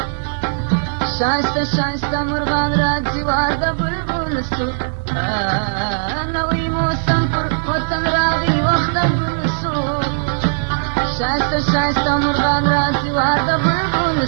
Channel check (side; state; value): left; silent; 59 dB below the other